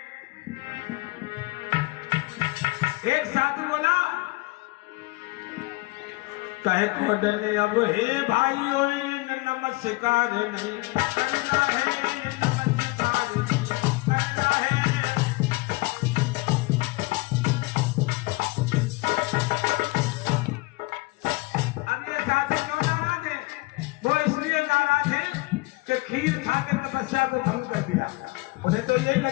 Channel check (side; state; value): right; quieter; 23.8 dB